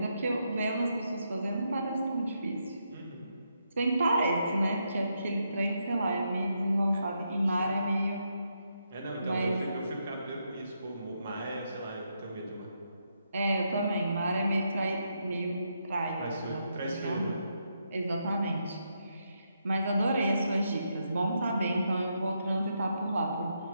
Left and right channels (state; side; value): inverted; both; correlation -0.80